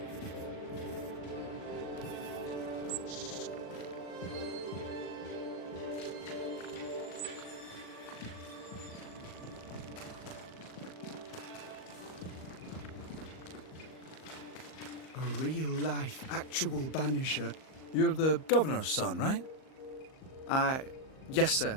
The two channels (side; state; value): right; late; 38 ms